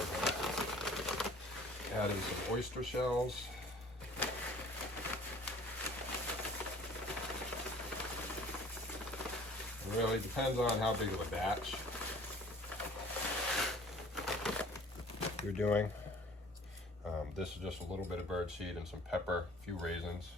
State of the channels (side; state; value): both; normal; correlation 0.50